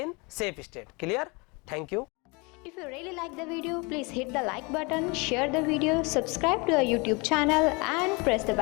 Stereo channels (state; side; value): quieter; right; 28.6 dB